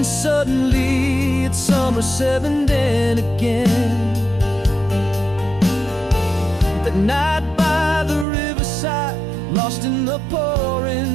suddenly it's summer 7 then again. That night by the riverside, lost in the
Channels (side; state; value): left; drops out; at 8.2 s